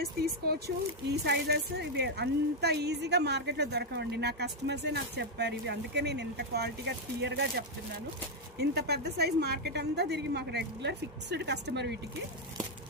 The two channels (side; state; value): both; normal; correlation 0.01